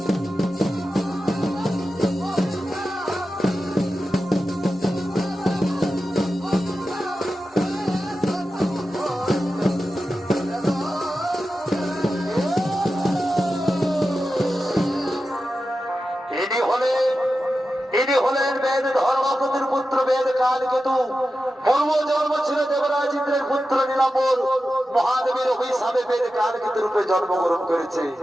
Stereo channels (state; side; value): normal; both; correlation 0.92